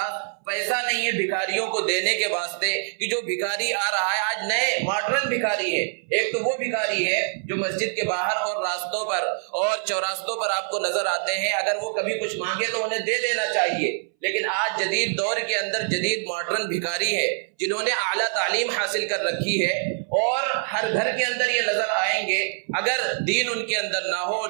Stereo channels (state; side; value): silent; left; 62 dB below the other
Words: پیسہ نہیں ہے بھکاریوں کو دینے کے واسطے۔ کہ جو بھکاری آ رہا ہے آج نئے ماڈرن بھکاری ہے، ایک تو وہ بھکاری ہے جو مسجد کے باہر اور راستوں پر اور چوراستوں پر آپ کو نظر آتے ہیں، اگر وہ کبھی کچھ مانگے تو انہیں دے دینا چاہیے۔ لیکن آج جدید دور کے اندر جدید ماڈرن بھکاری ہے جنہوں نے اعلیٰ تعلیم حاصل کر رکھی ہے، اور ہر گھر کے اندر یہ نظر آئیں گے۔ اگر دین ان کے اندر نہ ہو